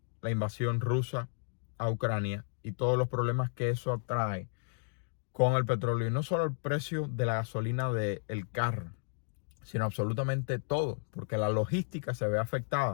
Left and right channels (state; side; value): silent; right; digital silence